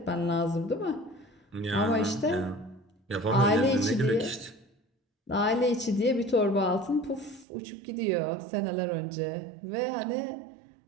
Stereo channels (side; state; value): left; drops out; at 7.5 s